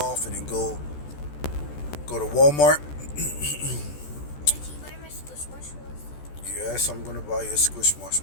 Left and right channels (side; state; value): right; late; 14 ms